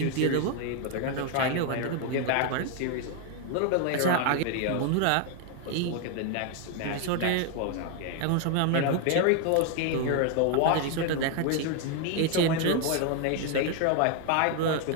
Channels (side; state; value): both; different; correlation 0.01